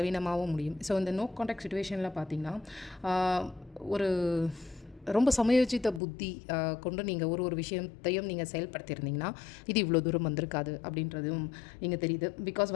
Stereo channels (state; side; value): drops out; right; at 6.0 s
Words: முடியும். ஸோ இந்த நோ கான்டாக்ட் சுச்சுவேஷனில் பார்த்தீங்கன்னா ஒரு ரொம்ப சமயோசித்த புத்தி கொண்டு நீங்கள் ஒரு விஷயத்தையும் நீங்கள் செயல்படுத்தியிருந்தீங்கன்னா இது இவ்வளோ தூரம் வந்திருக்காது அப்படின்றதும் இங்கே தெரியுது. பிகாஸ்